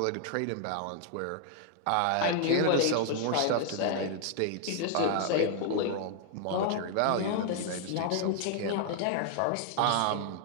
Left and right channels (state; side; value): different; both; correlation 0.00